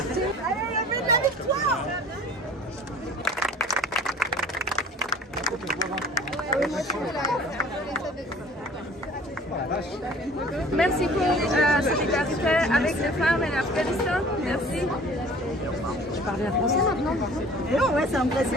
la vie de la victoire. Merci pour solidarité avec les femmes et l'Afghanistan. Merci. Tu parles bien français maintenant? Non, ouais, c'est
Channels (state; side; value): normal; both; correlation 0.47